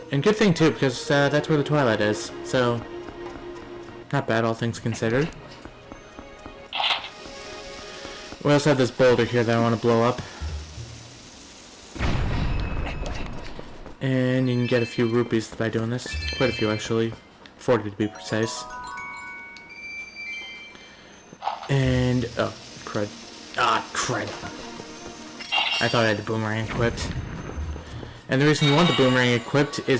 And good thing, too, because that's where the Twilight is. So, not bad, all things considered. We also have this boulder here that I want to blow up. And you can get a few rupees by doing this. Quite a few, actually. 40 to be precise. And... oh, crud. Ah, crud. I thought I had the boomerang equipped. And the reason you want the boomerang equipped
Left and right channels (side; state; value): both; identical; correlation 1.00